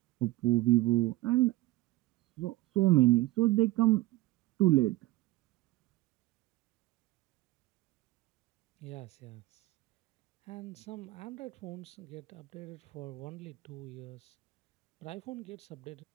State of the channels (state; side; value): quieter; left; 18.1 dB